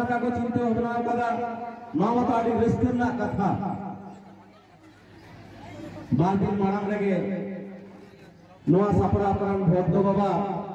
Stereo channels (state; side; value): identical; both; correlation 1.00